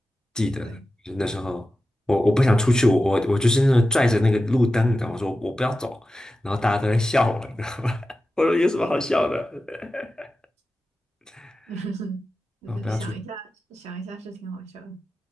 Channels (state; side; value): normal; both; correlation 0.93